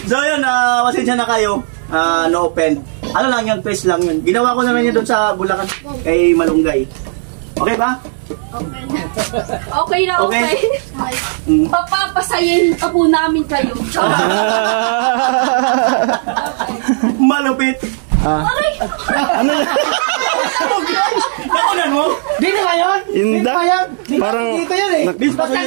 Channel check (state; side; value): silent; left; 65 dB below the other